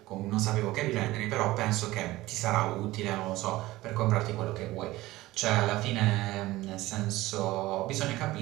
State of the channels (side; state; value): left; quieter; 17.9 dB